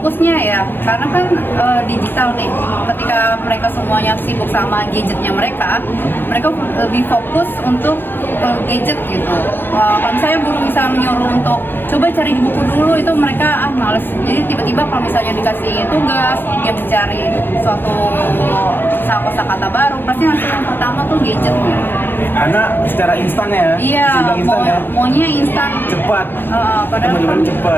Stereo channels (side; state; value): right; late; 0.099 ms